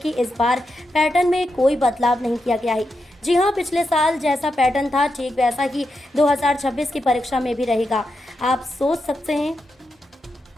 इस बार पैटर्न में कोई बदलाव नहीं किया गया है। जी हां, पिछले साल जैसा पैटर्न था ठीक वैसा ही 2026 की परीक्षा में भी रहेगा। आप सोच सकते हैं,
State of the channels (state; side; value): normal; both; correlation 0.86